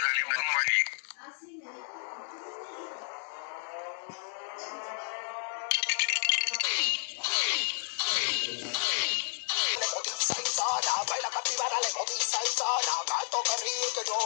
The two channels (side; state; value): right; silent; digital silence